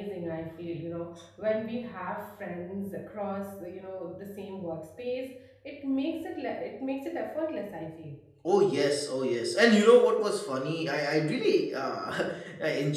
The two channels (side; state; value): both; identical; correlation 1.00